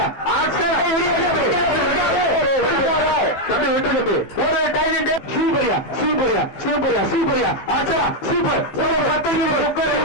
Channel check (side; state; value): right; late; 15 ms